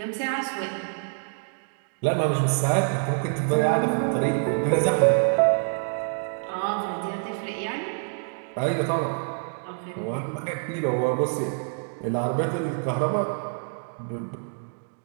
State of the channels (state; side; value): silent; left; 61 dB below the other